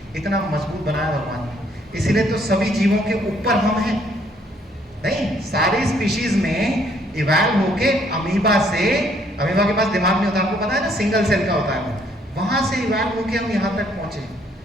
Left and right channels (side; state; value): both; normal; correlation 0.66